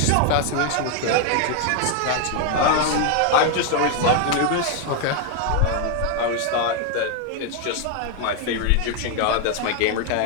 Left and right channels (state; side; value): different; both; correlation 0.01